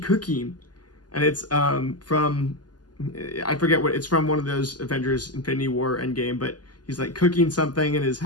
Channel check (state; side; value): late; right; 0.70 ms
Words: And it's from, I forget what, it's from one of those Avengers Infinity War Endgame, but he's like cooking something in his